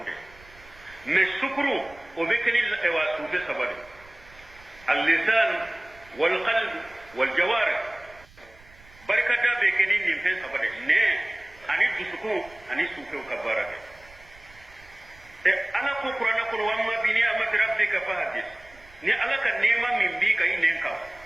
me sukuru obe ke ni ewa sube sabade al-lisan wal qalb wal jawarih barka da be ke ni nimfen sabade ne ani dusuku ani suke ka baraka e ala ko qur'ana ko wamma bi ni amat rabbika fahdis ni ala ka nema min bi kai nen ka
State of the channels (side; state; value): right; noise; rumble, 24 dB below the sound